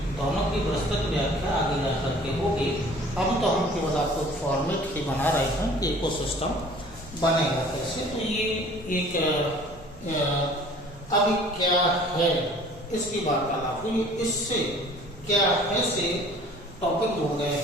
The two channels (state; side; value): normal; both; correlation 0.50